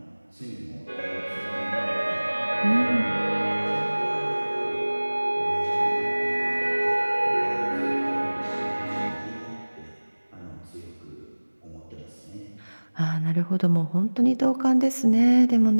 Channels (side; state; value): both; inverted; correlation -1.00